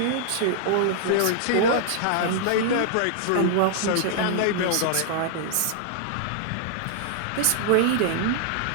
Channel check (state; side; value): different; both; correlation -0.01